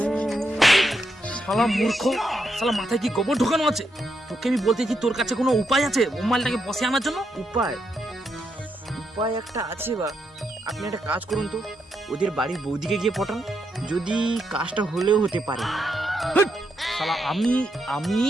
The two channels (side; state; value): both; normal; correlation 0.81